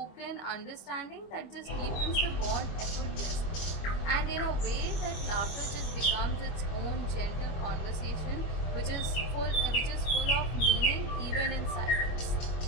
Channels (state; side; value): late; right; 25 ms